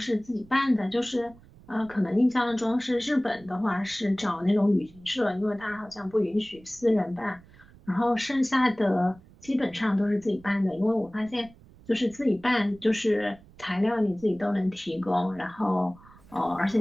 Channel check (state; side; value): noise; right; rumble, 24 dB below the sound